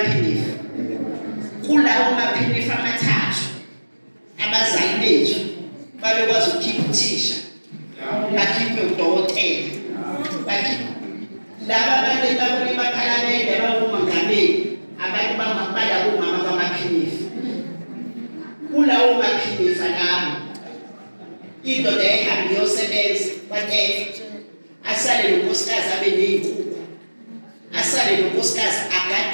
phinifu. Kulawo maphinifu amathathu abazali bethu babekwazi ukukhipha uthisha bakhiphe udokotela bakhiphe laba abantu babone baphalamende abangomongameli abantu bangabala bomama bamaphinifu. Kulawo maphinifu lawo indoda ehambe yosebenza kwaNtefe asale nonkosikazi abe ney'nkukhu asale nonkosikazi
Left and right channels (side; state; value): both; inverted; correlation -1.00